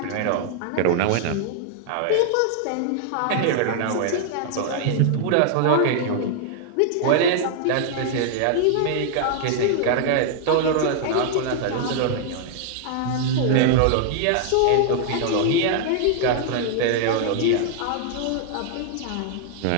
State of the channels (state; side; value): different; both; correlation 0.00